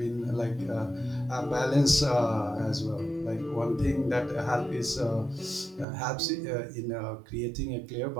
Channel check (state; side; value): drops out; left; at 5.9 s